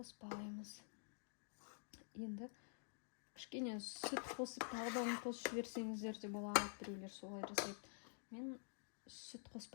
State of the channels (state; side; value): silent; right; digital silence